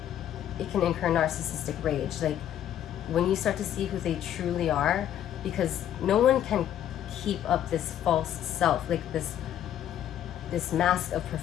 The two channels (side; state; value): right; quieter; 10.8 dB